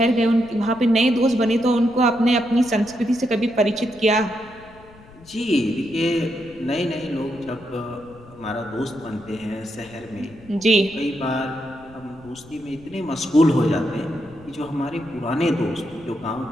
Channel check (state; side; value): noise; left; rumble, 22 dB below the sound